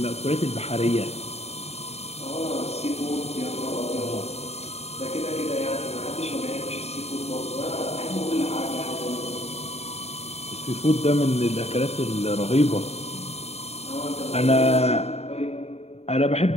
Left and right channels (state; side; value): late; right; 0.30 ms